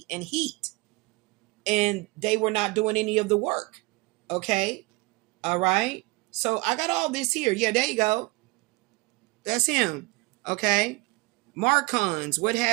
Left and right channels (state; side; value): quieter; left; 24.7 dB